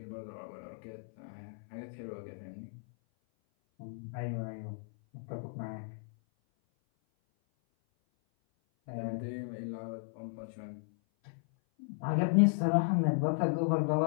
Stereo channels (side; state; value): right; silent; 54 dB below the other